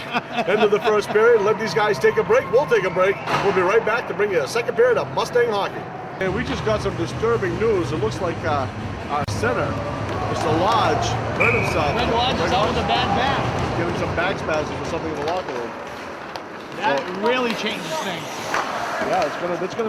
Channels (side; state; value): both; identical; correlation 1.00